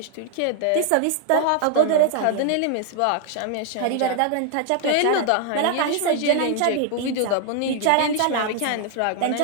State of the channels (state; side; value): different; both; correlation 0.00